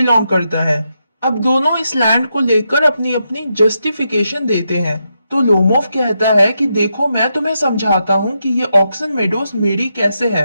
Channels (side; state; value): both; inverted; correlation -0.84